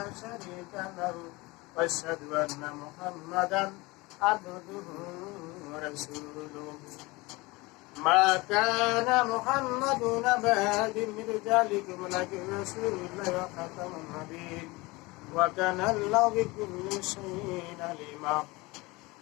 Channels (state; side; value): quieter; right; 23.1 dB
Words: شريك له وأشهد أن محمدا عبده ورسوله ما كان محمد أبا أحد من رجالكم ولكن رسول الله وخاتم النبيين وكان الله بكل شيء عليما